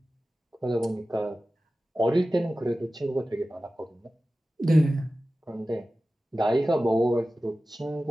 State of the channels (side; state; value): both; normal; correlation 0.95